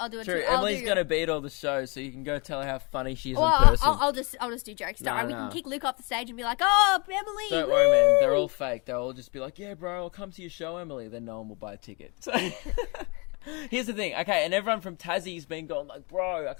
True, Emily's going to beat all the shows, so you can go tell her how funny she is in Well, person. I'll just do jokes. Don't No, worry, we no. can kick Luke off the stage and be like, "Oh, Emily!" Don't woo!" worry, man. They're all fake. They'll all just be like, yeah, bro, I'll come to your show, Emily. Then no one will buy a ticket. So here's the thing. Okay, and everyone from Tassie's been going like, bro, I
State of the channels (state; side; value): quieter; right; 30.6 dB